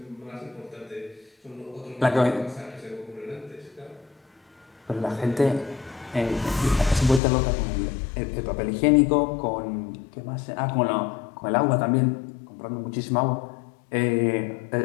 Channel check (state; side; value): drops out; right; at 7.2 s